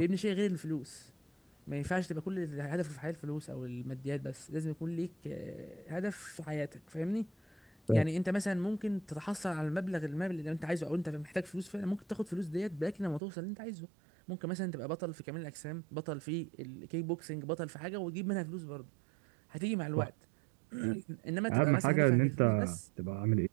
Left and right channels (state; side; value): drops out; left; at 13.2 s